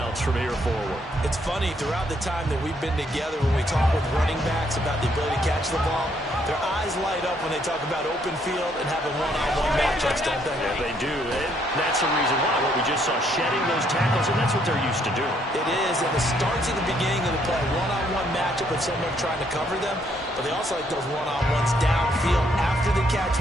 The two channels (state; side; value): normal; both; correlation 0.70